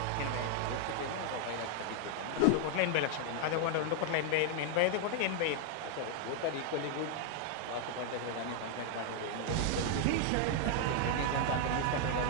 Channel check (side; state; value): both; different; correlation 0.00